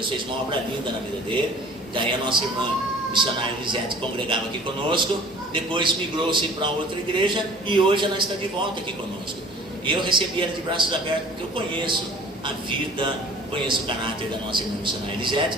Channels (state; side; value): normal; both; correlation 0.49